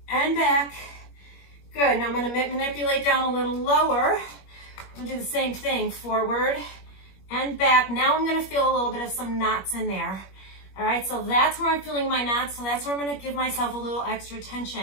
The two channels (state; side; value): late; right; 21 ms